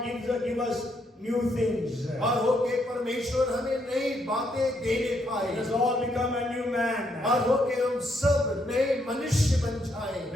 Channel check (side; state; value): both; normal; correlation 0.75